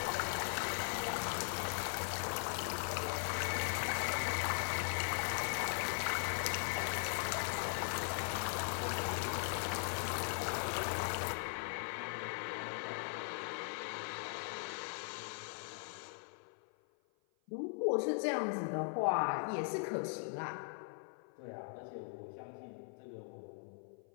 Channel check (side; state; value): right; silent; 51 dB below the other